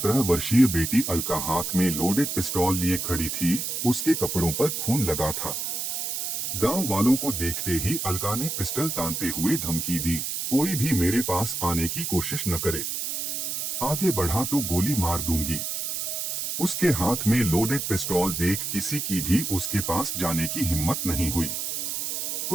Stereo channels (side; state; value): right; noise; hiss, 3 dB below the sound